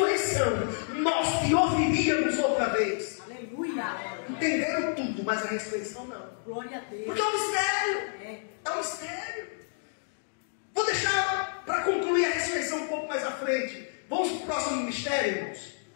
nós te ouviríamos outra vez. Aleluia. Entenderam tudo, mas a ressurreição não. Glória a Deus. Porque é um mistério. É um mistério. Vou deixar para concluir a ressurreição um pouco mais à frente. Vamos para o próximo mistério, irmãos.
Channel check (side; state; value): right; silent; digital silence